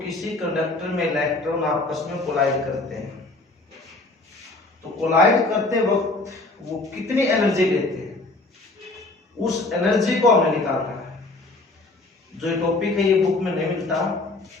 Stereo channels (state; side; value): quieter; right; 3.1 dB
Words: किसी कंडक्टर में इलेक्ट्रॉन आपस में कोलाइड करते हैं, तो कोलाइड करते वक्त वो कितनी एनर्जी लेते हैं उस एनर्जी को हमने निकालना है। जो ये टॉपिक है ये बुक में नहीं मिलता,